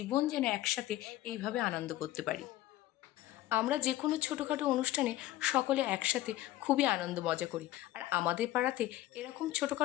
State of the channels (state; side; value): quieter; right; 15.4 dB